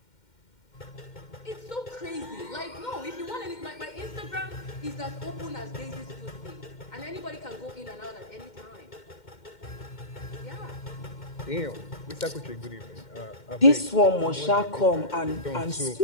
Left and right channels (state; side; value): late; right; 2.1 ms